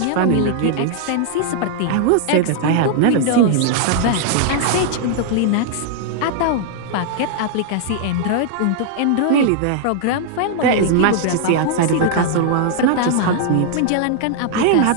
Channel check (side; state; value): both; different; correlation 0.00